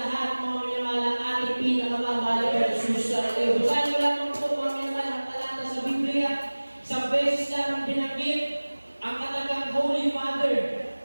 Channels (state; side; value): inverted; both; correlation -1.00